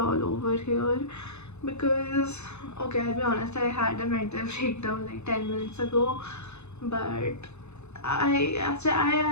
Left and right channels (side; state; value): right; late; 0.81 ms